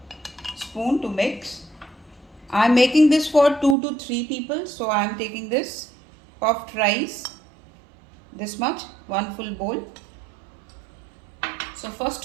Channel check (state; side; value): drops out; left; at 3.8 s